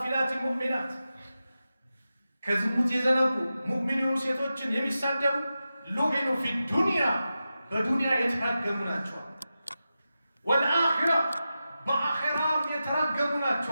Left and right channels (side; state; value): both; inverted; correlation -0.92